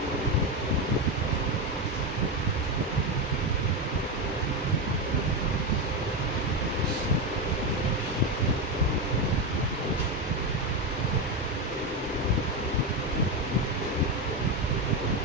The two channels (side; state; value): both; normal; correlation 0.12